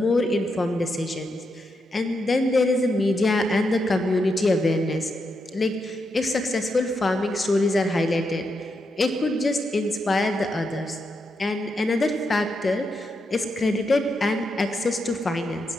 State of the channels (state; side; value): normal; both; correlation 0.83